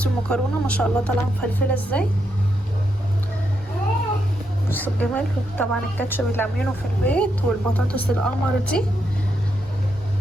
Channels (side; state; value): both; normal; correlation 0.81